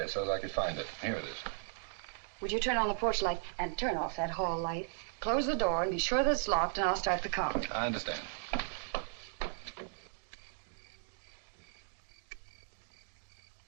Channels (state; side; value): silent; left; digital silence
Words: so that I could find it. Here it is. Would you turn on the porch light and turn off that hall light? Close the door and be sure that it's locked, and I'll start the car. I understand.